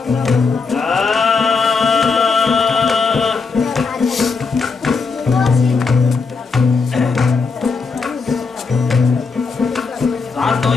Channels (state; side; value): quieter; right; 4.7 dB